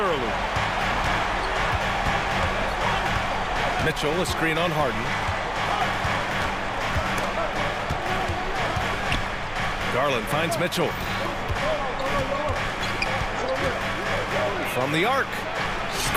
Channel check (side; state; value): both; identical; correlation 1.00